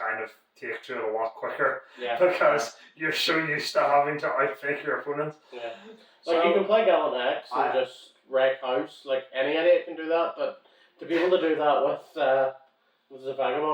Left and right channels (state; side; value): identical; both; correlation 1.00